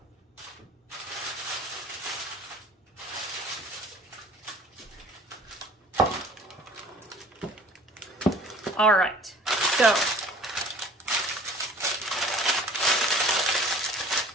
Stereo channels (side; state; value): both; normal; correlation 0.48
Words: All right, so